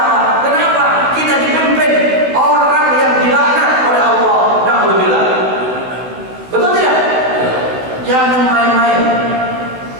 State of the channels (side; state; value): left; late; 15 ms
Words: Kenapa? Kita dipimpin orang yang dilaknat oleh Allah. Na'udzubillah. Betul tidak? Jangan main-main.